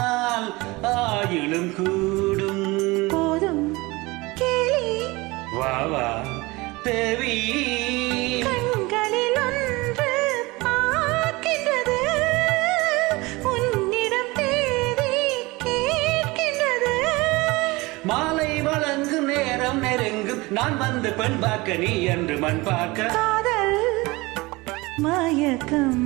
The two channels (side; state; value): left; quieter; 22.8 dB